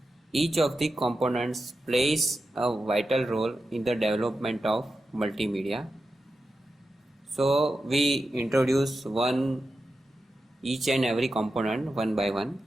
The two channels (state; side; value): normal; both; correlation 0.91